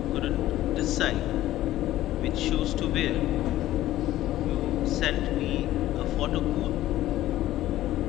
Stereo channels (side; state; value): right; quieter; 14.5 dB